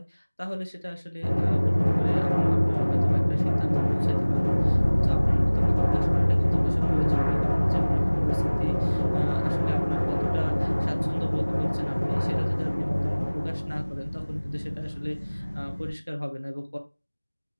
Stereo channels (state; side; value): inverted; both; correlation -1.00